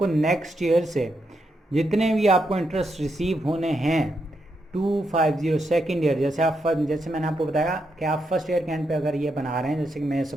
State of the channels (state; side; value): normal; both; correlation 0.82